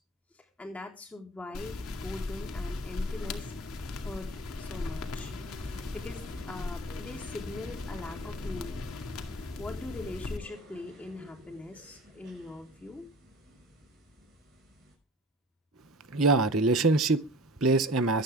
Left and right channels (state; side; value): normal; both; correlation 0.41